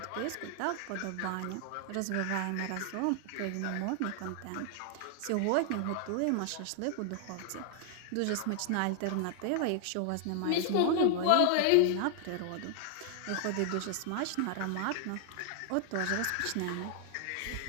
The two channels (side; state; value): both; different; correlation 0.00